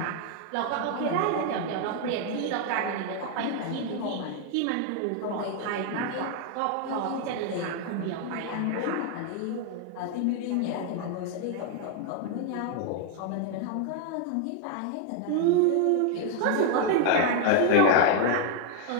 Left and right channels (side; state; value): both; different; correlation 0.00